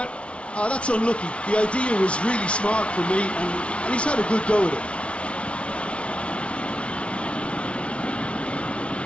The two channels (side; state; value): right; late; 0.060 ms